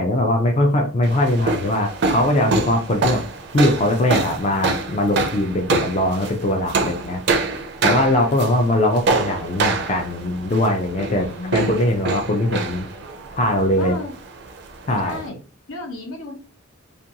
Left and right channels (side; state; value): both; normal; correlation 0.31